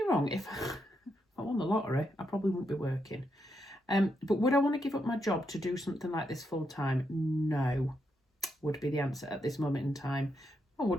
wrong. If I won the lottery, I probably wouldn't be working. But would I want to give up my job to do something like this full time? No, would be the answer at this moment in time. I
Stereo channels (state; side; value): normal; both; correlation 0.81